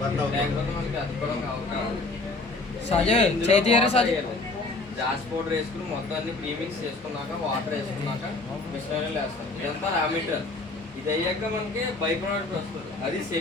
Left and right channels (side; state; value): right; quieter; 3.3 dB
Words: మనకి అతుక్కోవడం అవకాశం. జాస్ పౌడర్ వేసుకుని మొత్తం అన్ని ప్రీమిక్స్ చేసుకున్నాక వాటర్ వేసుకున్నాక మిషనరీలు వేస్తాం. ఇదంతా రా మెటీరియల్. ఇది అయ్యాక మనకి బై ప్రోడక్ట్ వస్తుంది, అది